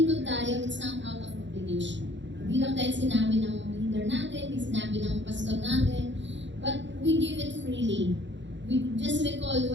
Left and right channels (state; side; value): late; left; 0.53 ms